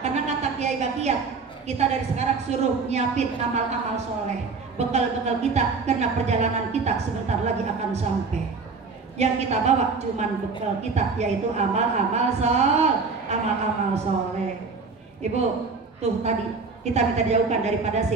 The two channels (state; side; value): quieter; left; 4.6 dB